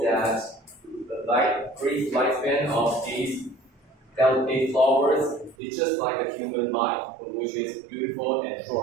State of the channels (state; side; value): drops out; left; at 5.6 s